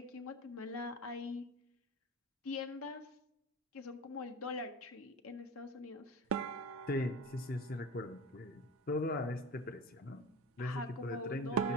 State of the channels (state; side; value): normal; both; correlation 0.31